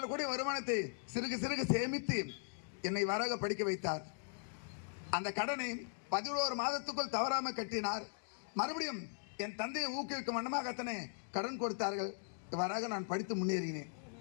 கூட வருமானத்தை சிறுகு சேமித்து என்னை வராக படிக்க வைத்தார். அந்த கடனை 11 மாதத்துக்குள் தவறாம கட்டினார். மறுபடியும் என் தந்தையை ஊக்குவிக்கும் வண்ணமாக அத்தனை கடன் கொடுத்தார்கள். இவ்வாறாக நான் படித்து முன்னேறினேன்.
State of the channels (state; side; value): silent; right; digital silence